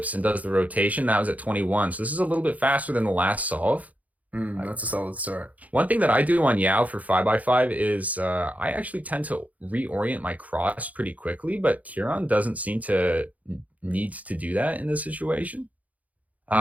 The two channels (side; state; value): left; late; 0.074 ms